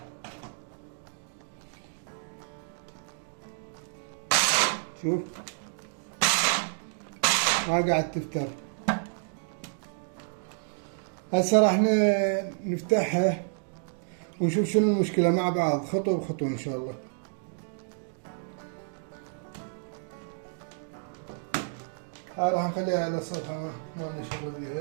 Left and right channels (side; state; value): left; silent; digital silence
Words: شوف ما قاعد تفتر. هسه راح نفتحها ونشوف شنو المشكلة مع بعض، خطوة بخطوة إن شاء الله. هاي راح نخليها على الصفحة، ما نشغل